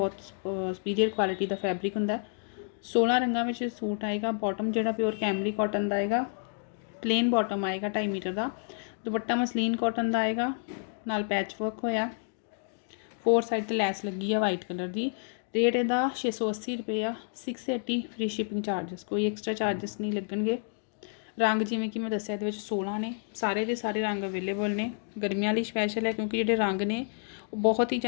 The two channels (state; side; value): silent; right; 58 dB below the other